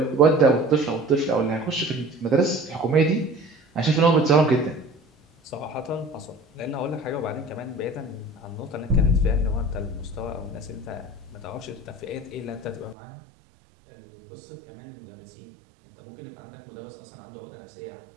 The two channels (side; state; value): left; drops out; at 13.0 s